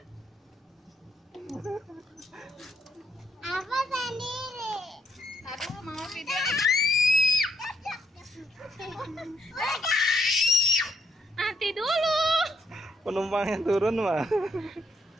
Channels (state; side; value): normal; both; correlation 0.74